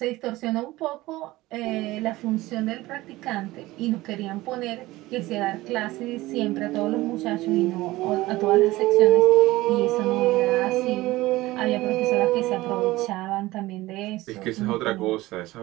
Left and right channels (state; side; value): quieter; left; 18.5 dB